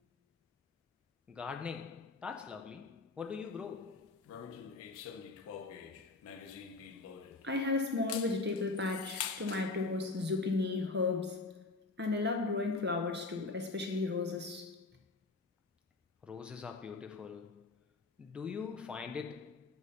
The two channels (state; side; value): quieter; right; 3.6 dB